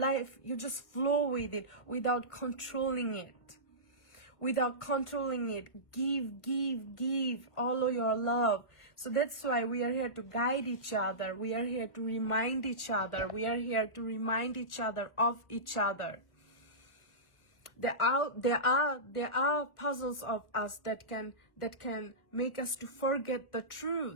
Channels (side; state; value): right; late; 1.4 ms